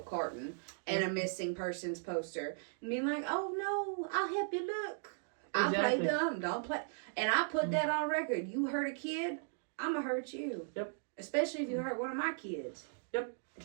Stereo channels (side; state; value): left; silent; digital silence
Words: carton and a missing persons poster. And being like, oh no, I'll help you look. I play dumb, don't play. And I put that on record. You hurt a kid, I'm going to hurt you. Yep. Especially if you hurt one of my kids. Yep.